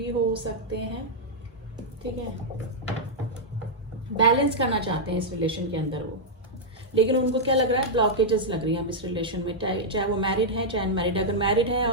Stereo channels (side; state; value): both; normal; correlation -0.06